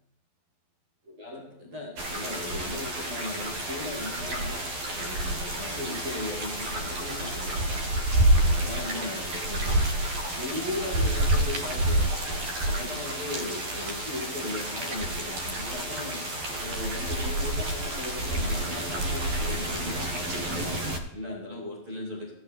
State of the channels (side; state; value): left; late; 12 ms